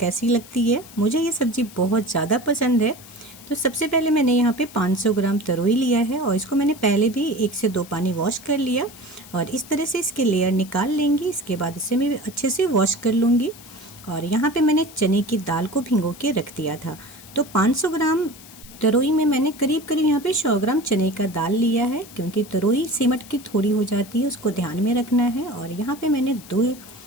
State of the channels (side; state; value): left; noise; hiss, 19 dB below the sound